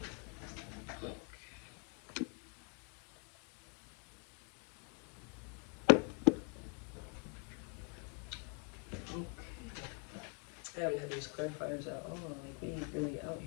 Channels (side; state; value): right; quieter; 39.6 dB